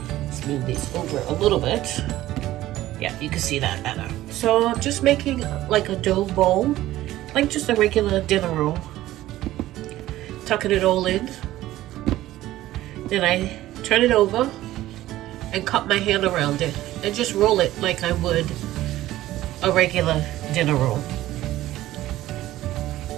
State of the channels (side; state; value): left; quieter; 15.2 dB